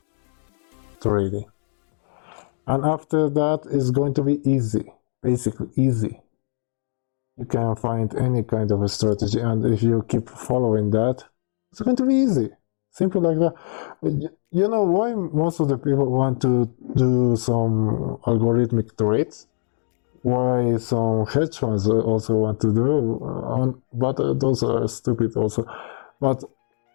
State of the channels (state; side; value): silent; right; digital silence